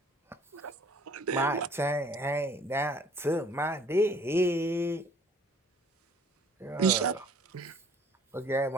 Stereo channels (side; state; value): both; normal; correlation 0.54